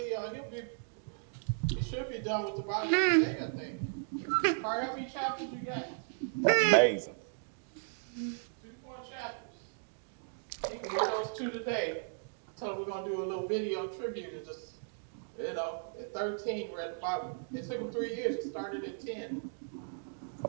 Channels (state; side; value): silent; left; digital silence